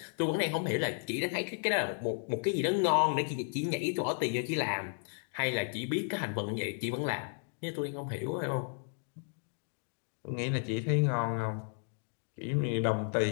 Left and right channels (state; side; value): silent; right; 55 dB below the other